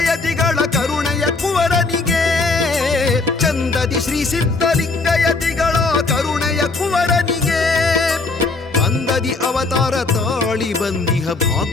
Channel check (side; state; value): right; quieter; 3.8 dB